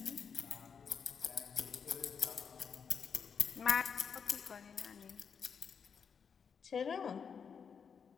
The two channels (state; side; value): quieter; right; 6.5 dB